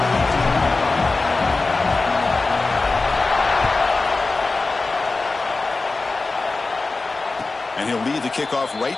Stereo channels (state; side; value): quieter; right; 3.6 dB